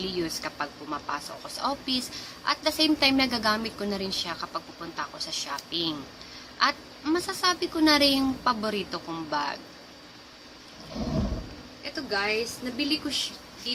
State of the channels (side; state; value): both; identical; correlation 1.00